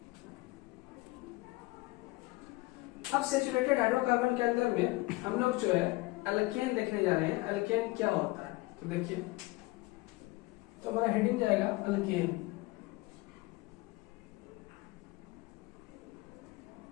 अब सैचुरेटेड हाइड्रोकार्बन के अंदर में हम लोग जो है अल्केन देखने जा रहे हैं। अल्केन क्या होता है, तो देखिए, तो हमारा हेडिंग जाएगा अल्केन।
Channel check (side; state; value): right; quieter; 21.8 dB